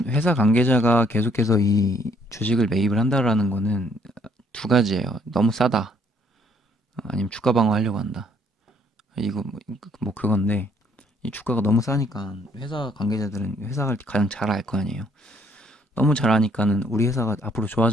회사 관계자가 계속해서 이 주식을 매입을 한다라는 거는 두 가지예요. 너무 싸다. 아니면 주가 방어하려고 한다. 이거 뭐 그건데 이 주가가 너무 싸니까 회사 관계자들은 회사를 가장 잘 알 거 아니에요. 너무 잘하니까는 우리 회사가 앞으로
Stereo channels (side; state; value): both; normal; correlation 0.65